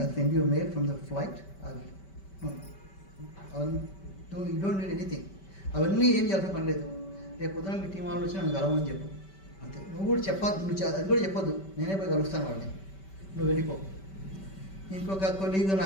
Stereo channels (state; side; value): late; right; 5.2 ms